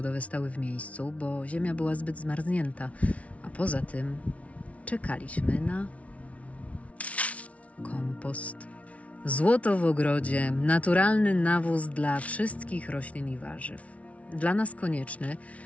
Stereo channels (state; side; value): late; right; 0.065 ms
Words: stały w miejscu, bo ziemia była zbyt zmarznięta, a poza tym czekaliśmy na kompost. Złoto w ogrodzie, naturalny nawóz dla wszystkich roślin i warzyw. Dla nas konieczny,